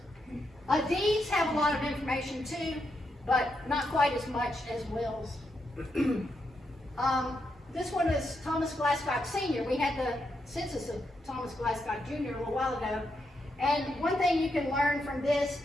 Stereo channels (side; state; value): both; normal; correlation 0.82